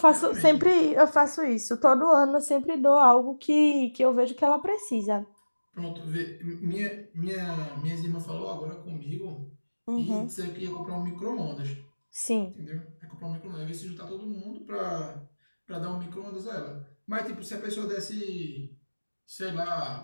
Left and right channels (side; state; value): both; inverted; correlation -1.00